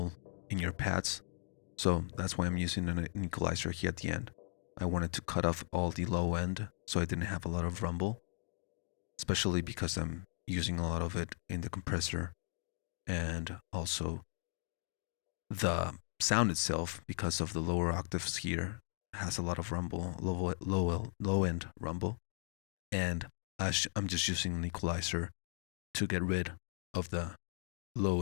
in your pads? So that's why I'm using an equalizer here at the end. I wanted to cut off all the low end so I didn't have a lot of rumble, especially because I'm using a lot of it in the compressor, and also the sound itself, because of the lower octaves here, has a lot of rumble, low end rumble, and I'm just using an equalizer to get rid of the low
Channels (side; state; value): right; silent; digital silence